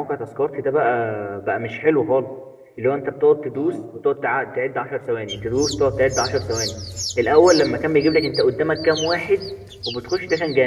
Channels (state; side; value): identical; both; correlation 1.00